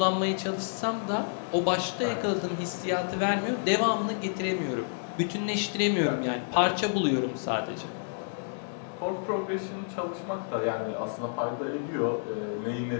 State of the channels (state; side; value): silent; right; digital silence